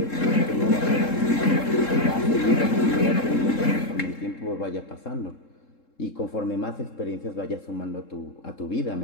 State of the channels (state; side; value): late; right; 3.7 ms